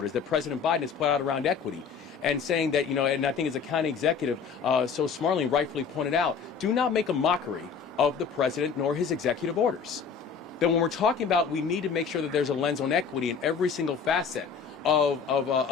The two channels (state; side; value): quieter; right; 6.1 dB